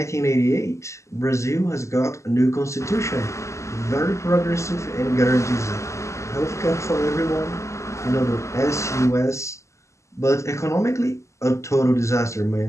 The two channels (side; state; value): right; late; 0.14 ms